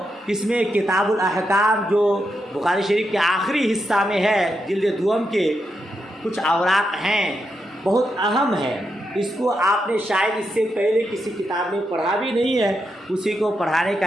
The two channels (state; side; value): normal; both; correlation 0.84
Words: اس میں کتاب الاحکام جو بخاری شریف کے آخری حصہ میں ہے جلد دوم کے کچھ اوراق ہیں، بہت اہم ہے اس کو آپ نے شاید اس سے پہلے کسی کتاب میں پڑھا بھی نہیں ہے، اسی کو پڑھانے